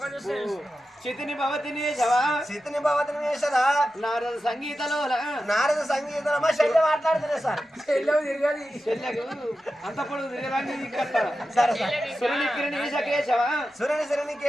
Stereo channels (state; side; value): normal; both; correlation 0.92